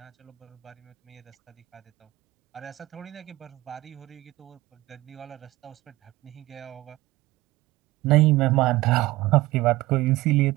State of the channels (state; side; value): quieter; left; 18.4 dB